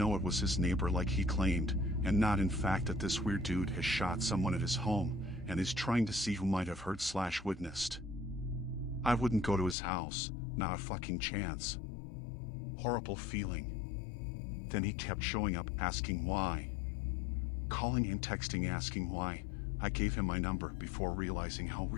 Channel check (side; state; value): right; drops out; at 9.8 s